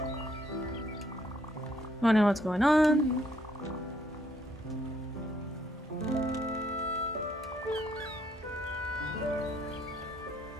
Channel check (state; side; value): normal; both; correlation 0.69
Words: Wondering what's going on.